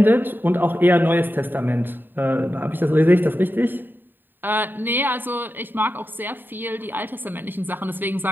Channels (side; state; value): left; late; 0.093 ms